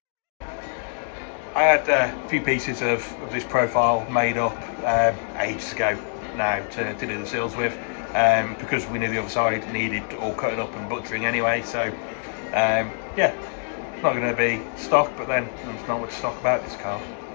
I had a few pieces of this profile made up ages ago now to do the sills with, because we knew the other side needed all cutting up and butchering anyway. So yeah, it's not going to be stock, but then there's not much stock about this car.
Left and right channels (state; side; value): silent; right; 62 dB below the other